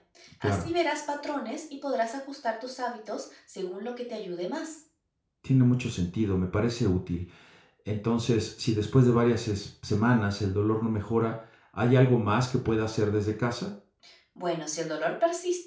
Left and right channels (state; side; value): identical; both; correlation 1.00